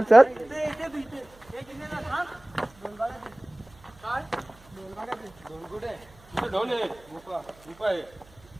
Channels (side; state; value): right; noise; hum, 25 dB below the sound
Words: चल. इथे तू इथे. एक इथे ना, थांब. दोन गाड्या दे. काय? दोन गाड्या दे. दोन कुठे? तिथे ढोल आहे गुफा गुफा आहे एक